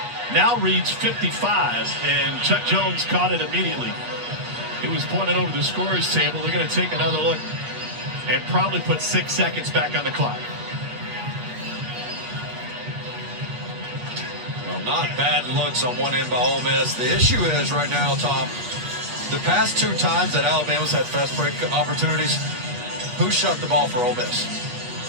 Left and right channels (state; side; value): late; left; 8.1 ms